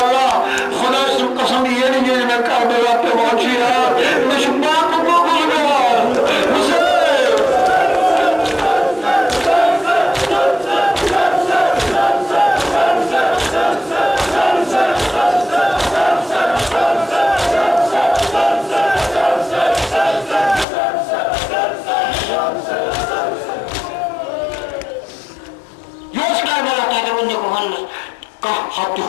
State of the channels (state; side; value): drops out; right; at 20.7 s